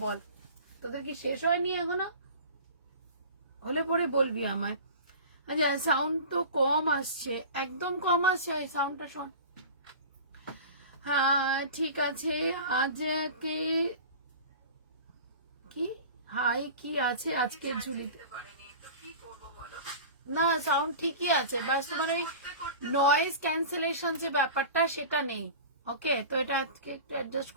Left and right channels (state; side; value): inverted; both; correlation -0.36